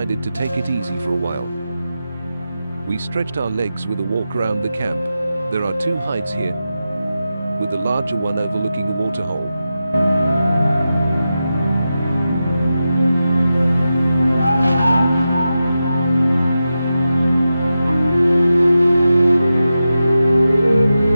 to take it easy for a while. We stretched our legs with a walk around the camp. There are two hides here, with the larger one overlooking a waterhole.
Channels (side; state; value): both; inverted; correlation -0.91